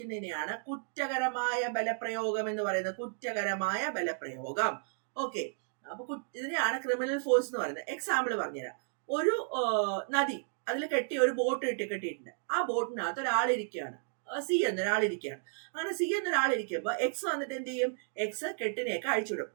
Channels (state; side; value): silent; left; digital silence